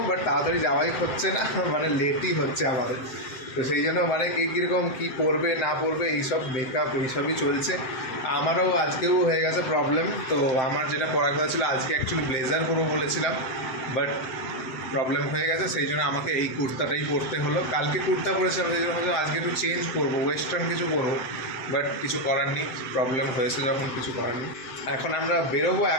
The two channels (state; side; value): late; right; 7.7 ms